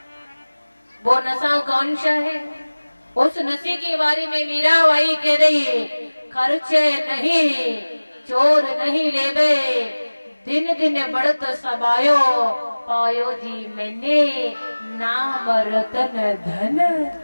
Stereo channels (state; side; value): inverted; both; correlation -1.00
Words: वो नशा कौन सा है? उस नशे के बारे में मीराबाई कह रही है, खर्चे नहीं चोर नहीं लेबे, दिन दिन बढ़त सबायो, पायो जी मैंने नाम रतन धन